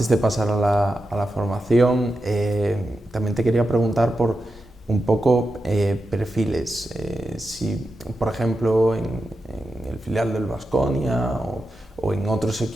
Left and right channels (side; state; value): both; normal; correlation 0.89